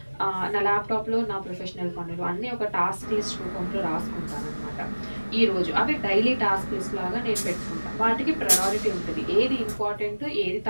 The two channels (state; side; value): inverted; both; correlation -1.00